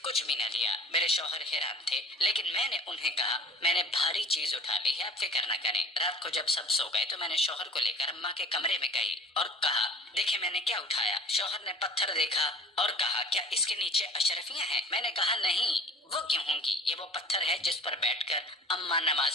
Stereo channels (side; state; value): both; normal; correlation 0.44